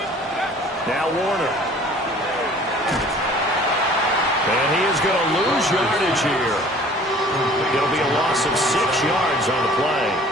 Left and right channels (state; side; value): normal; both; correlation 0.50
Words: Now Warner. And he is going to lose yardage here. It'll be a loss of 6 yards on the play.